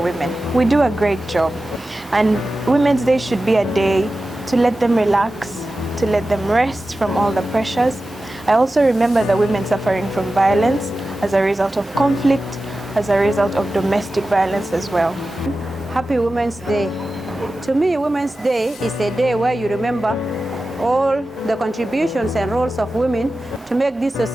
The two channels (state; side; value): normal; both; correlation 0.94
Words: women. We do a great job, and Women's Day should be a day to let them relax, to let them rest from all the pressures. I also remember the women suffering from violence as a result of conflict, as a result of domestic violence as well. Happy Women's Day. To me, Women's Day is a day where you remember all the contributions and roles of women to make this